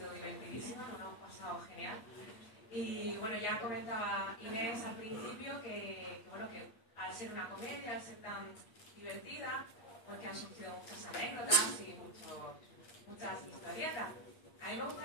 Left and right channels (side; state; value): right; late; 8.9 ms